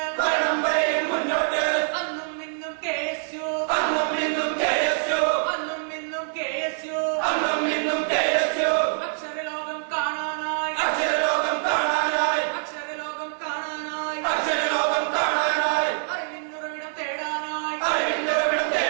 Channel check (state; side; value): silent; left; digital silence